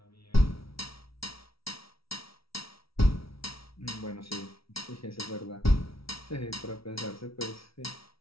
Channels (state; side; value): late; right; 0.75 ms